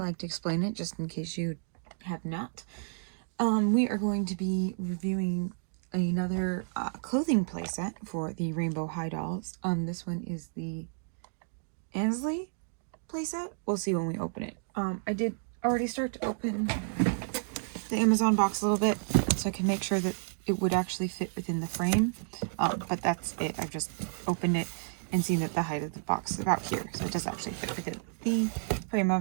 to explain it just in case you have not. We are going to be reviewing another clothing playset for the Rainbow High dolls. This one is the Ansley playset. We'll see when we open it. I did already start to open the Amazon box a little bit so I can make sure that it would actually fit within the frame, but that's it. I've just opened it and seen that the height of the box is about here, so it does actually fit within the frame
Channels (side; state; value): left; silent; digital silence